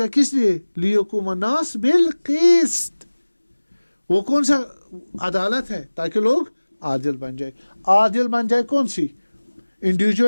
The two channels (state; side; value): inverted; both; correlation -1.00